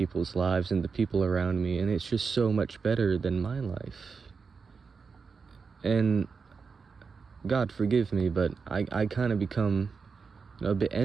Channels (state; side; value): quieter; left; 5.2 dB